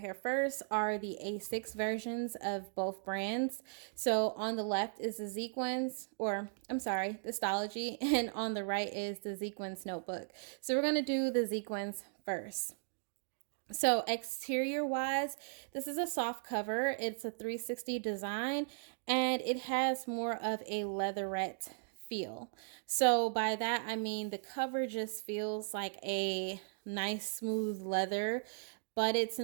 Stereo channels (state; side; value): silent; left; digital silence